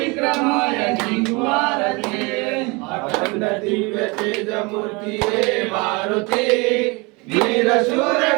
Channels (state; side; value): quieter; left; 27.4 dB